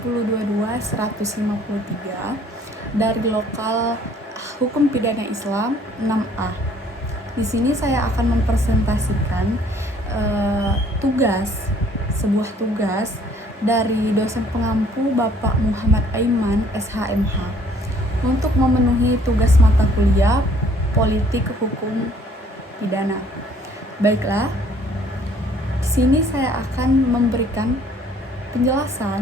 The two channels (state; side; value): normal; both; correlation 0.59